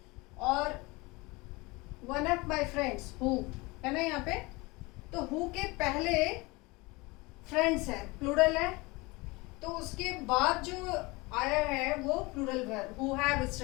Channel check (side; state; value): right; quieter; 24.2 dB